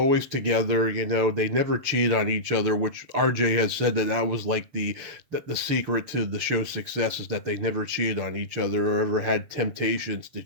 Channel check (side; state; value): left; late; 6.8 ms